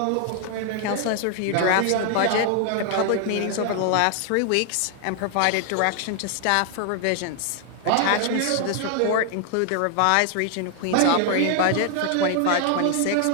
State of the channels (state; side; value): different; both; correlation 0.00